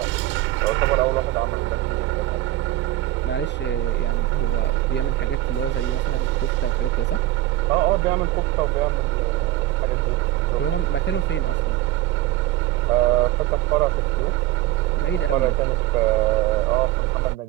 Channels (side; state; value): left; quieter; 15.3 dB